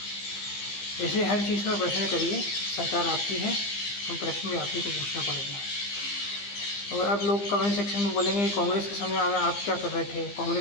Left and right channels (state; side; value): late; right; 15 ms